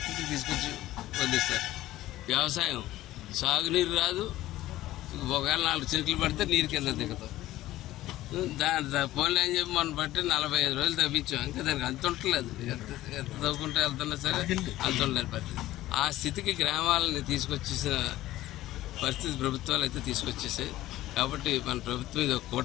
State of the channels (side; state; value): right; quieter; 15.5 dB